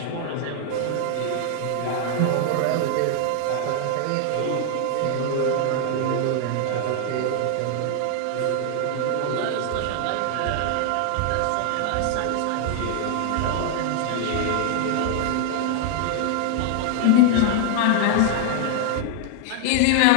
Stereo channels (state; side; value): different; both; correlation 0.00